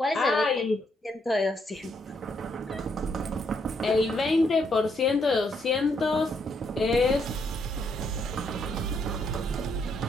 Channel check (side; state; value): both; normal; correlation 0.74